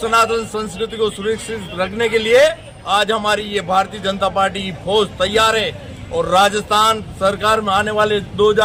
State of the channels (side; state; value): both; identical; correlation 1.00